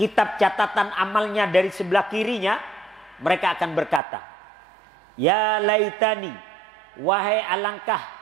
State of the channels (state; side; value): drops out; left; at 4.0 s